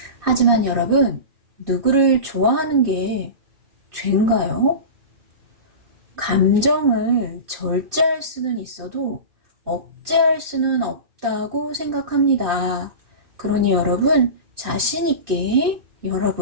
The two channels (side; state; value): left; late; 2.6 ms